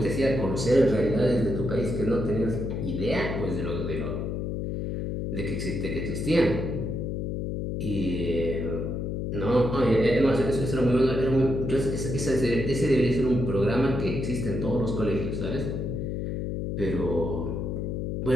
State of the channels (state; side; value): noise; left; hum, 2 dB below the sound